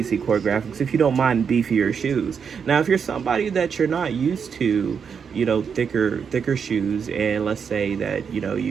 Choreographics if you don't mind beefier shoes. Now, if you're somebody that you're not used to, thicker shoes, and let's say that,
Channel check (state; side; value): quieter; left; 6.7 dB